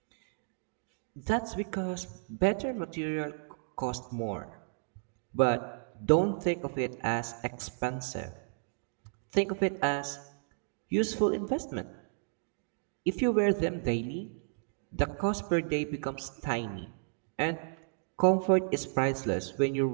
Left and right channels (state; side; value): silent; left; digital silence